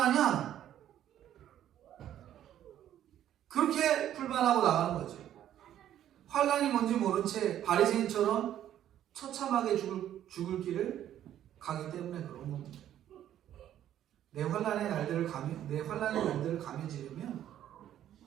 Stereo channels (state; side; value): quieter; left; 11.3 dB